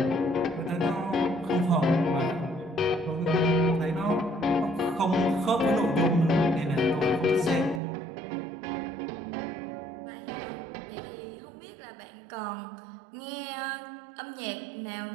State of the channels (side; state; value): left; drops out; at 7.8 s